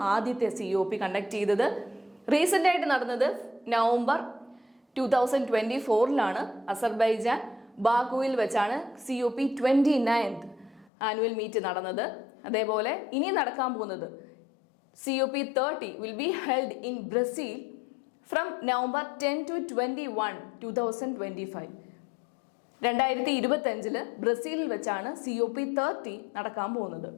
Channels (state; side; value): drops out; right; at 10.9 s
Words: ആദ്യത്തെ COP കണ്ടക്ട് ചെയ്തത്. റീസെൻ്റ് ആയിട്ട് നടന്നത് നവംബർ 2024 അസർബൈജാൻ ബാക്കുവിൽ വെച്ചാണ് COP 29th ആനുവൽ മീറ്റ് നടന്നത്. അതേപോലെ ഇനി നടക്കാൻ പോകുന്നത് COP 30 will be held in Brazil from November 10 to 21, 2025. 2025 ബ്രസീലിൽ വെച്ചാണ് COP 30 നടക്കാൻ പോകുന്നത്.